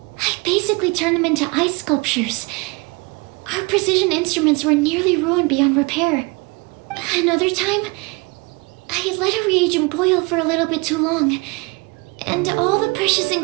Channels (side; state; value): left; quieter; 27.6 dB